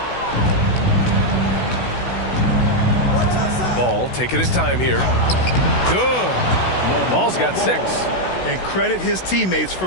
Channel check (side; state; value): right; late; 16 ms